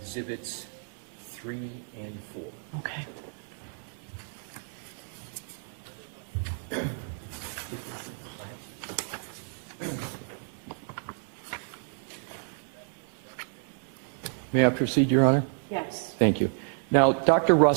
exhibits 3 and 4. Okay. May I proceed, Your Honor? Yes. Thank you. Now, Dr.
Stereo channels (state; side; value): silent; left; digital silence